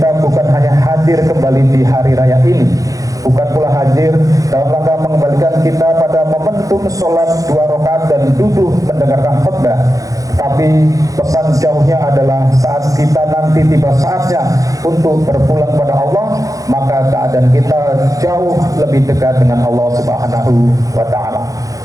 bukan hanya hadir kembali di hari raya ini, bukan pula hadir dalam rangka mengembalikan kita pada momentum sholat 2 rakaat dan duduk mendengarkan khutbah, tapi pesan jauhnya adalah saat kita nanti tiba saatnya untuk berpulang pada Allah, maka keadaan kita jauh lebih dekat dengan Allah Subhanahu wa Ta'ala.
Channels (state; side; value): late; left; 0.17 ms